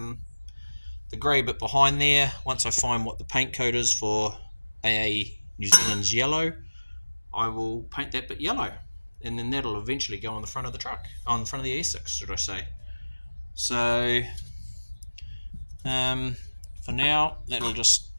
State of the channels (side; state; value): both; inverted; correlation -1.00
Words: grey bit behind there, once I find what the paint code is for AA New Zealand's yellow, I will paint that bit yellow, and then that'll eventually go on the front of the truck, on the front of the Essex, should I say. So for now, that'll just